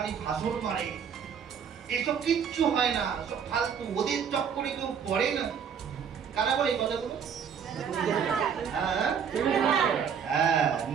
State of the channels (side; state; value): left; quieter; 7.3 dB